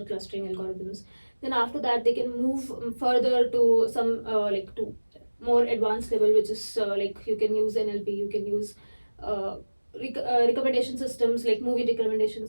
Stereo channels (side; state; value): both; inverted; correlation -1.00